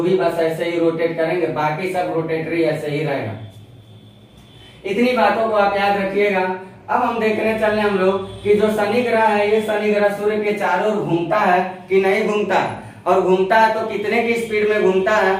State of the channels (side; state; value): both; identical; correlation 1.00